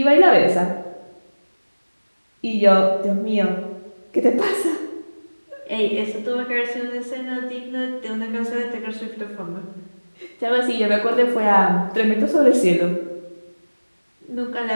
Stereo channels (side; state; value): both; inverted; correlation -1.00